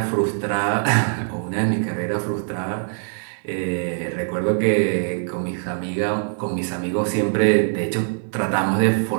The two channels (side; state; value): left; silent; digital silence